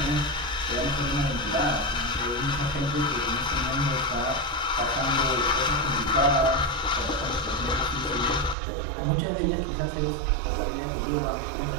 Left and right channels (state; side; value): drops out; left; at 8.6 s